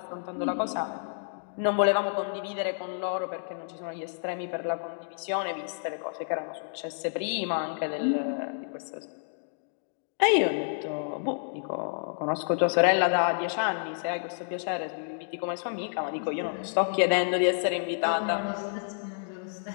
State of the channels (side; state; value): right; silent; digital silence